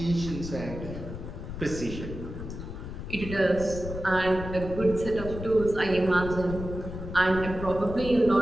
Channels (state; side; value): noise; left; rumble, 8 dB below the sound